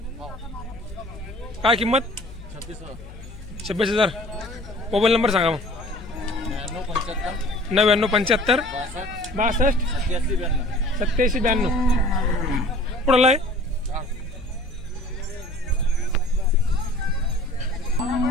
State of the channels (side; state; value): left; noise; hum, 16 dB below the sound